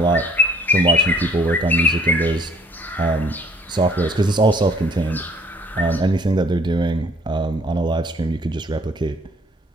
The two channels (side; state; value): both; normal; correlation 0.58